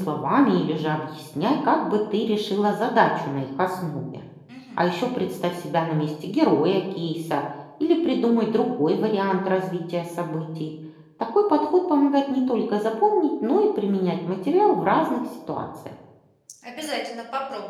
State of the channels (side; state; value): both; identical; correlation 1.00